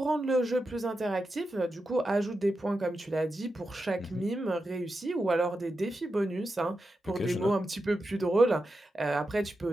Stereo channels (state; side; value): normal; both; correlation 0.89